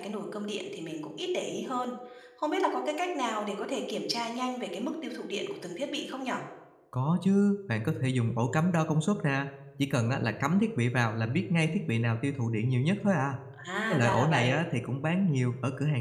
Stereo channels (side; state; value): both; identical; correlation 1.00